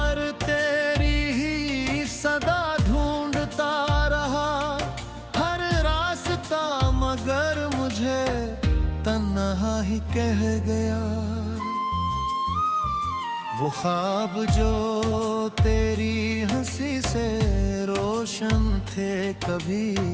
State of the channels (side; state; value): both; identical; correlation 1.00